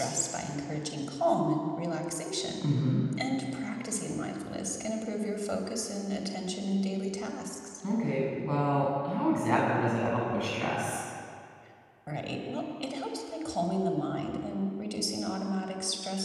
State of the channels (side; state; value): both; identical; correlation 1.00